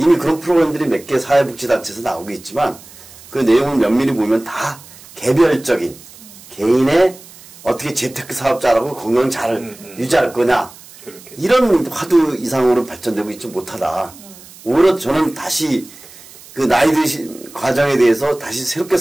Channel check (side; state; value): right; noise; hiss, 20 dB below the sound